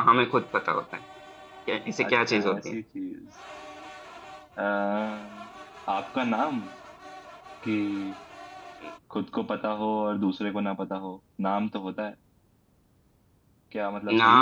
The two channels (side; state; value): both; identical; correlation 1.00